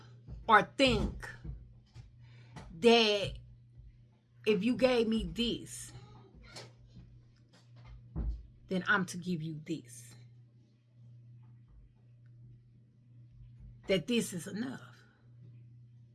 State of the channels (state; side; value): identical; both; correlation 1.00